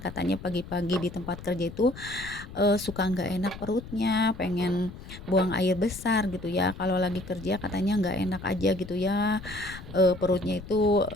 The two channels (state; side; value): noise; left; rumble, 14 dB below the sound